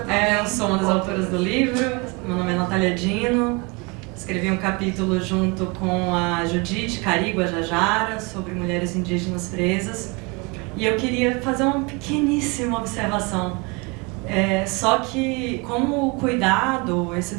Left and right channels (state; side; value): quieter; left; 28.4 dB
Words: Eu sou uma das autoras do livro, meu nome é Natália Dino, escrevi um capítulo junto com a Judite Carigo Jajara sobre mulheres indígenas presas, e eu queria fazer uma pequeníssima observação. Só que como o cuidado, esse